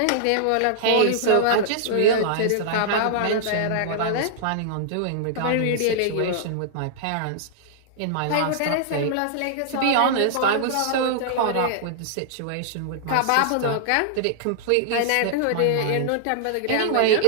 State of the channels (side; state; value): both; different; correlation -0.01